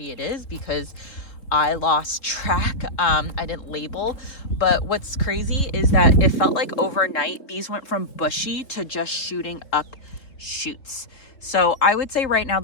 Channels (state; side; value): late; right; 3.7 ms